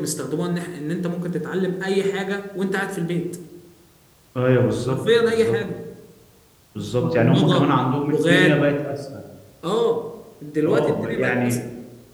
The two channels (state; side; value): identical; both; correlation 1.00